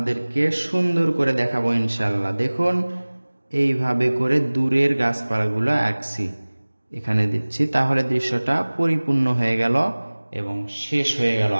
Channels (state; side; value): inverted; both; correlation -1.00